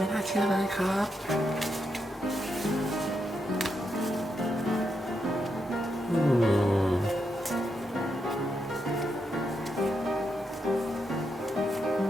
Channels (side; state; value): both; normal; correlation 0.83